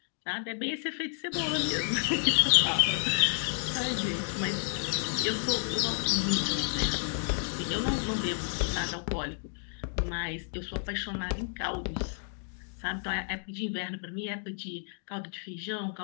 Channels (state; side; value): silent; right; 57 dB below the other